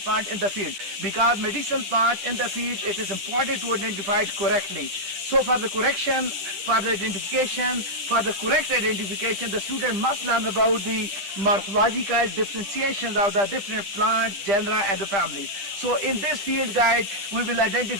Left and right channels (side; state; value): left; late; 10 ms